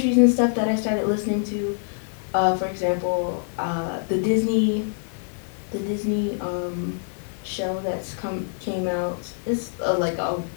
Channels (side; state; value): right; silent; 62 dB below the other